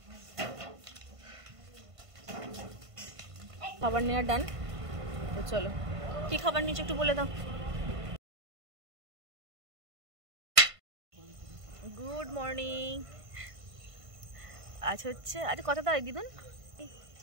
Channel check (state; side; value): late; left; 1.5 ms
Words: খাবার নেওয়া ডান, তো চলো কি খাবার নিচ্ছ একটু বলে দাও। Good morning. আজ হচ্ছে কত তারিখ দিদুন?